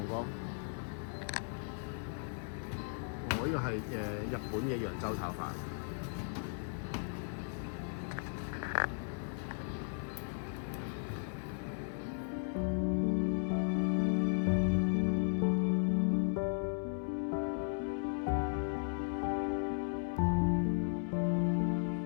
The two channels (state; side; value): silent; right; 54 dB below the other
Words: 哥？我呢個係日本嘅揚州炒飯。